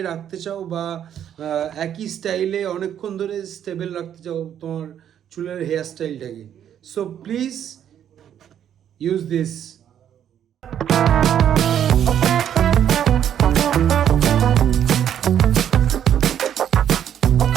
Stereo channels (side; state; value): left; quieter; 9.7 dB